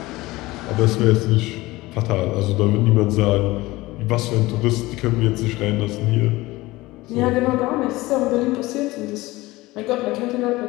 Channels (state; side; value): quieter; right; 19.7 dB